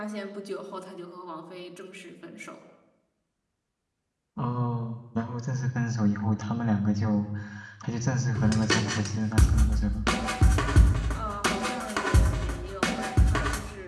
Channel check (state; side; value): identical; both; correlation 1.00